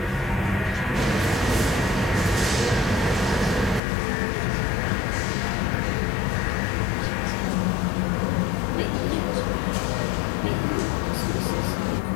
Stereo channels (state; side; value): drops out; right; at 3.8 s